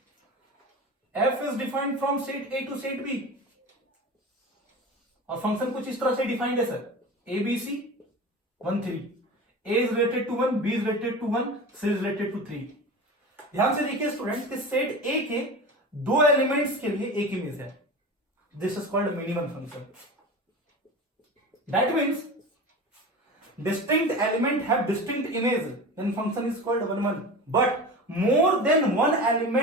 F is defined from set A to set B, और फंक्शन कुछ इस तरह से डिफाइंड है sir, A B C 1 3, A is related to 1, B is related to 1, C is related to 3। ध्यान से देखिए students कि सेट ए के दो एलिमेंट्स के लिए एक इमेज है, this is called many 1 function. That means distinct element have distinct image, then function is called 1 1. But more than one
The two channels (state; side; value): normal; both; correlation 0.32